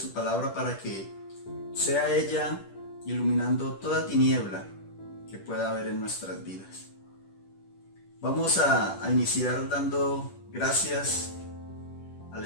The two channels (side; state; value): right; late; 10 ms